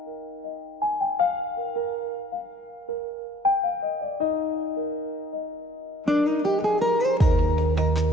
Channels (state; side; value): normal; both; correlation 0.55